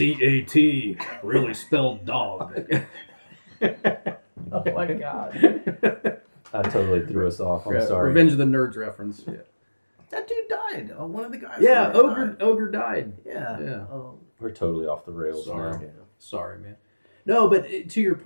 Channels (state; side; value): inverted; both; correlation -1.00